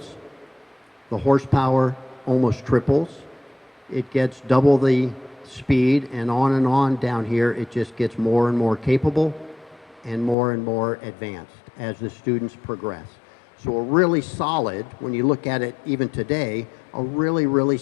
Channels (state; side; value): drops out; right; at 10.4 s